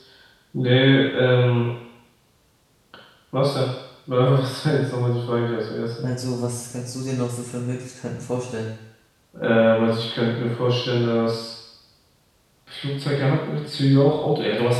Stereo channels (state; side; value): identical; both; correlation 1.00